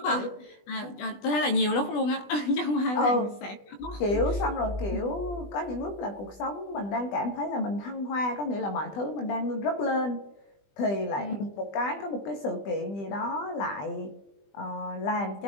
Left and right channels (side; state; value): right; late; 20 ms